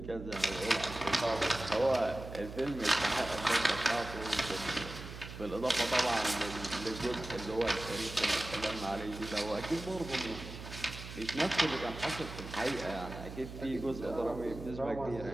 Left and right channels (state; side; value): noise; right; hum, 11 dB below the sound